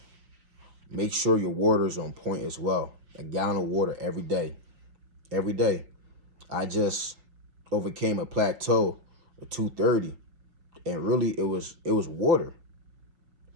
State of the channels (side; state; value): left; late; 6.0 ms